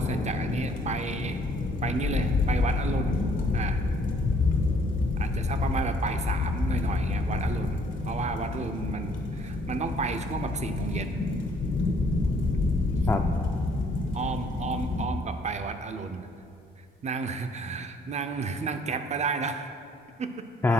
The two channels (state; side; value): normal; both; correlation 0.62